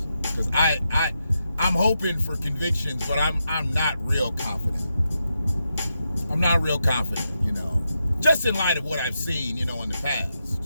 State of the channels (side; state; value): both; inverted; correlation -0.86